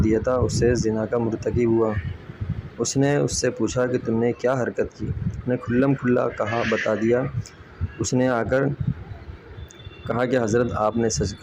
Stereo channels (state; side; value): identical; both; correlation 1.00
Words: تھا اس سے زنا کا مرتکب ہوا۔ اس نے اس سے پوچھا کہ تم نے کیا حرکت کی؟ اس نے کھلم کھلا بتا دیا۔ اس نے آ کر کہا کہ حضرت آپ نے سچ